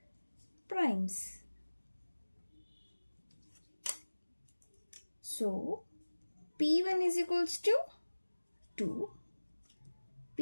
primes. So P1 is equals to 2,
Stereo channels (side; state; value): both; inverted; correlation -1.00